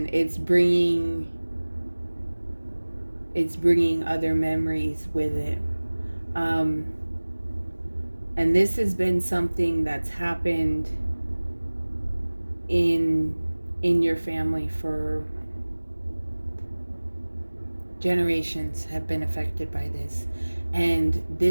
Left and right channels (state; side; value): inverted; both; correlation -1.00